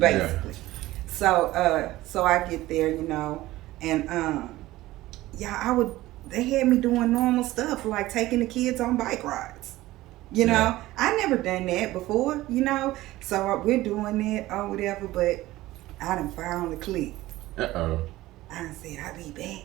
Yeah. So I get there, and they had me doing normal stuff like taking the kids on bike rides. I never done that before, so we're doing that or whatever, but I done found the clique. I done said, I'll be back.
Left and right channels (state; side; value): quieter; left; 17.0 dB